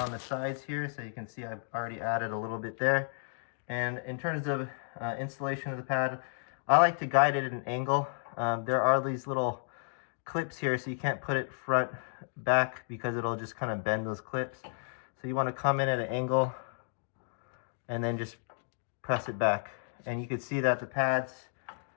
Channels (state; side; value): silent; right; digital silence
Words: the sides here, so you can see I've already added a little bit there. And in terms of installation of the pad, I like to guide it at an angle. There are these little clips here, so you can't put it front back because it'll just kind of bend those clips. So you want to come in at an angle and then just press it back. And you can see that the pads